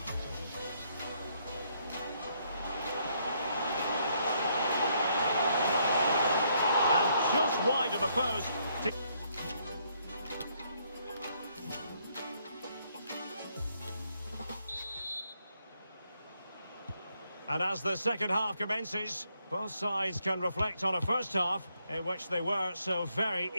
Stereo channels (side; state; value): both; inverted; correlation -0.72